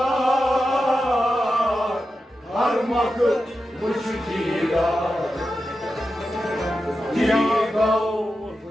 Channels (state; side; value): normal; both; correlation 0.90